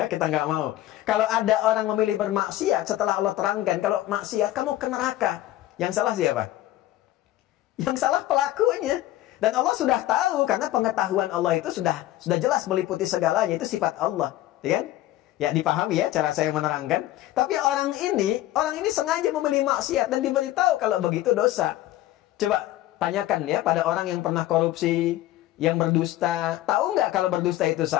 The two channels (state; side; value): quieter; right; 14.8 dB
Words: kita nggak mau. Kalau ada orang memilih bermaksiat, setelah Allah terangkan, kalau maksiat, kamu ke neraka. Yang salah siapa? Yang salah pelakunya. Dan Allah sudah tahu, karena pengetahuan Allah itu sudah jelas meliputi segalanya, itu sifat Allah. Ya kan? Ya, dipahami ya cara saya menerangkan. Tapi orang ini sengaja memilih maksiat dan diberitahu kalau begitu dosa. Coba tanyakan ya pada orang yang pernah korupsi, yang berdusta, tahu nggak kalau berdusta itu